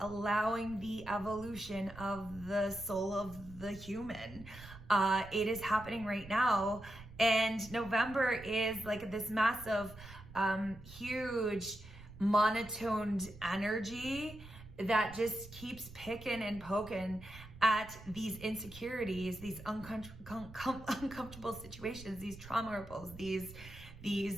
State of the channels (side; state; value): right; noise; rumble, 16 dB below the sound